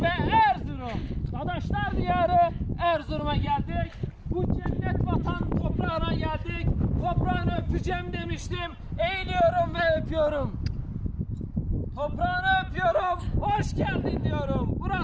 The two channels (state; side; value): identical; both; correlation 1.00